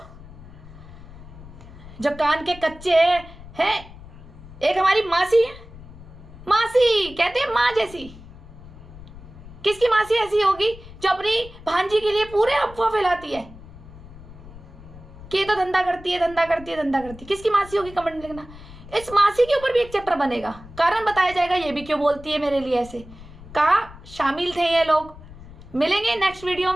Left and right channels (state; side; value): noise; left; rumble, 17 dB below the sound